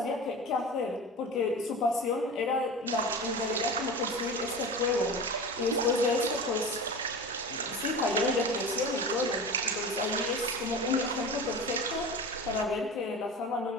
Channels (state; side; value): normal; both; correlation 0.31